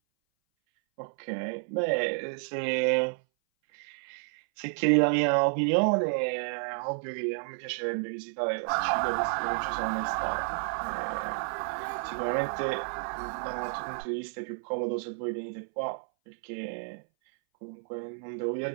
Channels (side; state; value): left; silent; 57 dB below the other